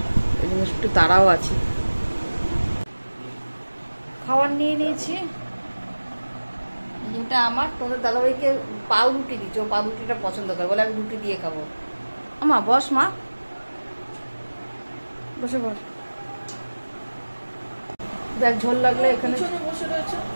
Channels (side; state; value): both; inverted; correlation -1.00